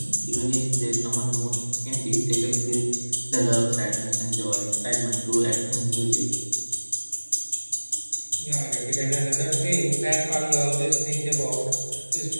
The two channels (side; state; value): both; inverted; correlation -1.00